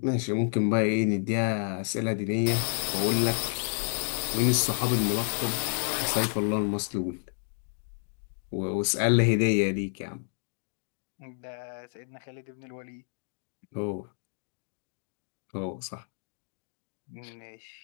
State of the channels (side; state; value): right; silent; digital silence